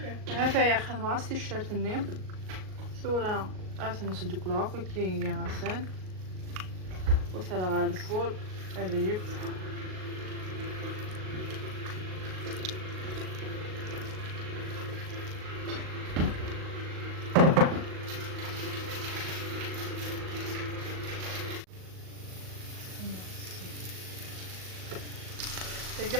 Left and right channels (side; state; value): left; late; 38 ms